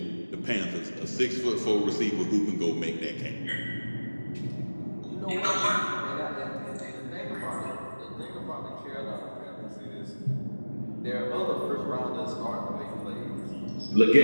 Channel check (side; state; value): both; inverted; correlation -1.00